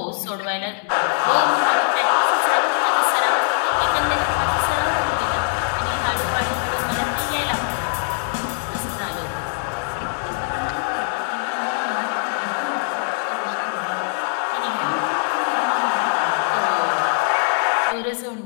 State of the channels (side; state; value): right; silent; digital silence